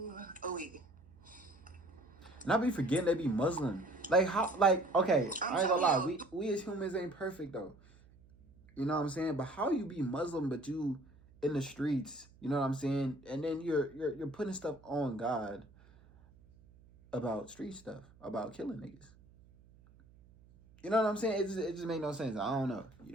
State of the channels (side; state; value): right; noise; hum, 26 dB below the sound